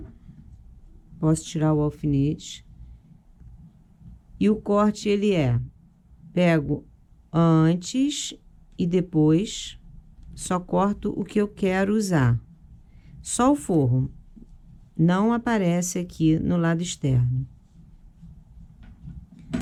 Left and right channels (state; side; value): identical; both; correlation 1.00